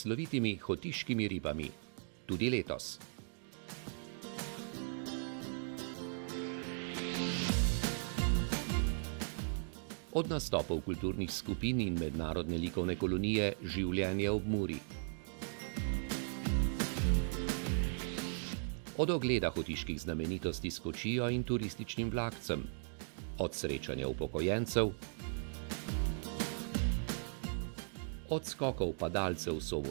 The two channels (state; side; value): silent; left; digital silence